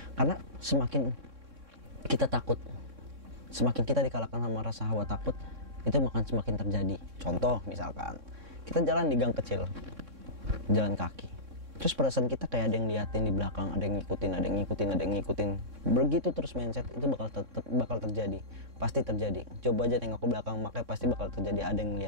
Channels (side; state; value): left; late; 3.6 ms